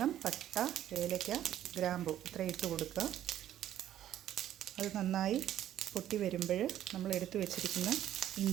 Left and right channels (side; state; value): left; quieter; 11.8 dB